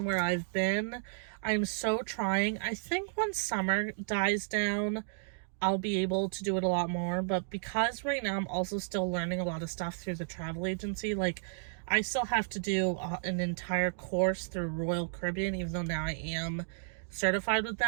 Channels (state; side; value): silent; left; digital silence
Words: where I've been. I'm so trying. I think when summer dies down, I'll be able to do it a lot more. But because right now I'm also still learning a lot of stuff through the travel agency, I still have to do an entire course through Royal Caribbean, even though now I am certified with